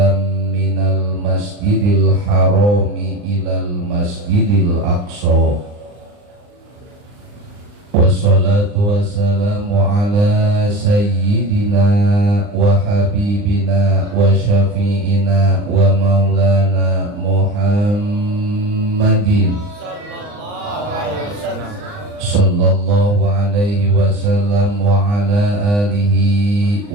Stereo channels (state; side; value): late; left; 39 ms